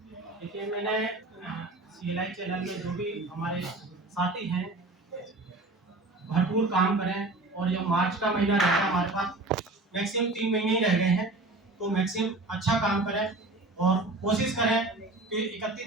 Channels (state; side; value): quieter; left; 3.0 dB